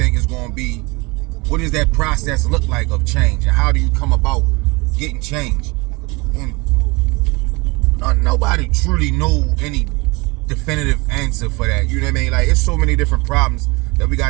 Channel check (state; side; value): quieter; left; 25.9 dB